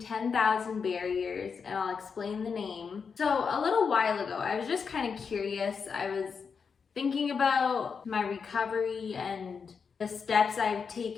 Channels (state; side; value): quieter; right; 5.8 dB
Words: Barriers, and I'll explain the name. So a little while ago, I was just kind of curious. I was thinking about my recovery and the steps I've